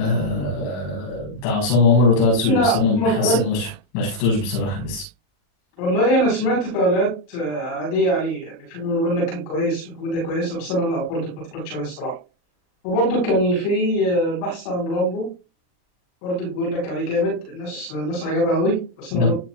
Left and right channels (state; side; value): late; right; 40 ms